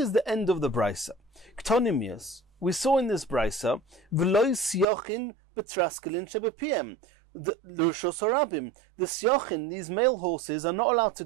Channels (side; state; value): left; drops out; at 4.9 s